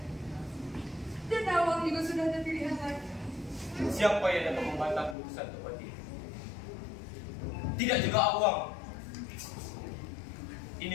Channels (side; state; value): right; drops out; at 5.2 s